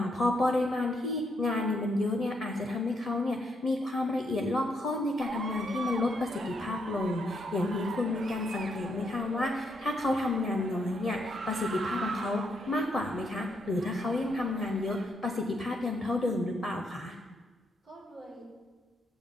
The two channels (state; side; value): normal; both; correlation 0.76